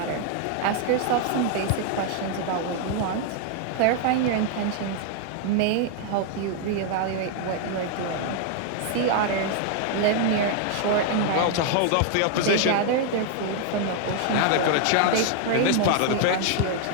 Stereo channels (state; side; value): different; both; correlation 0.00